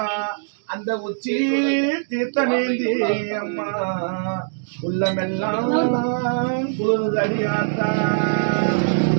அந்த உச்சி தீர்த்தமேந்தி அம்மா உள்ளமெல்லாம் குளிர்ந்து அடியாத்தா.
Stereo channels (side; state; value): left; silent; digital silence